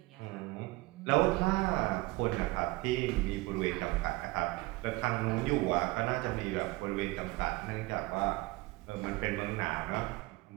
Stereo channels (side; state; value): left; quieter; 21.7 dB